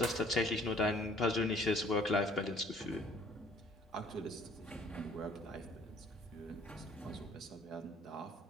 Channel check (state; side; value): normal; both; correlation 0.57